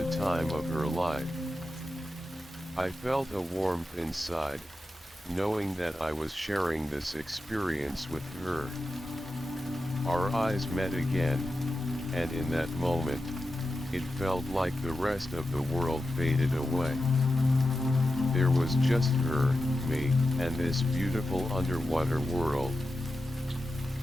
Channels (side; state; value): both; normal; correlation 0.91